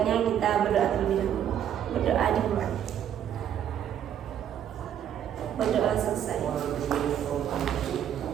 kita berdoa terlebih dahulu. Berdoa dimulai. Berdoa selesai.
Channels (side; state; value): left; quieter; 9.9 dB